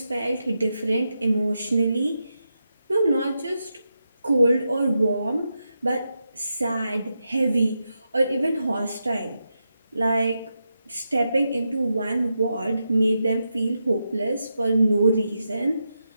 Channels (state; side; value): inverted; both; correlation -0.87